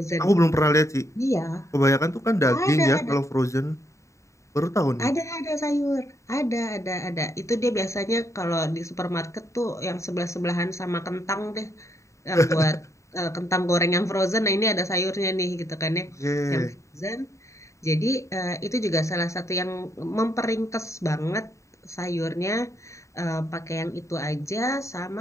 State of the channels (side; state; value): right; late; 0.14 ms